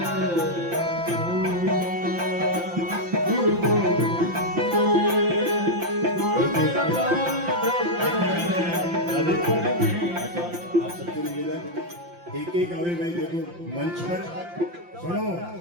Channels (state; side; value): late; left; 5.8 ms